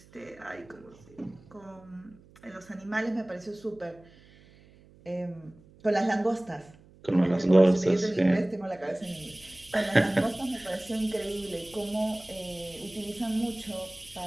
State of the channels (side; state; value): right; noise; hum, 25 dB below the sound